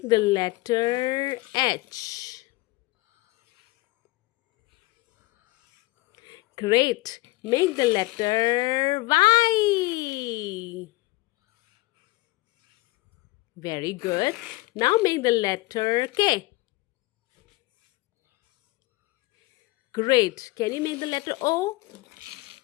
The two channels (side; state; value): right; quieter; 21.3 dB